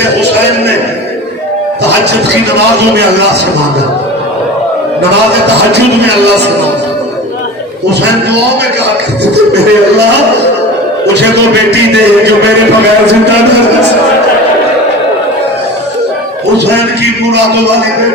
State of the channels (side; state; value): both; normal; correlation 0.34